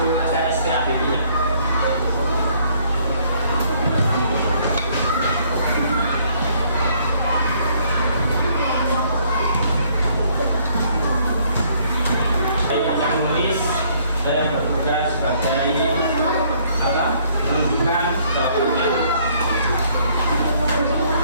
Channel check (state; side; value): inverted; both; correlation -0.64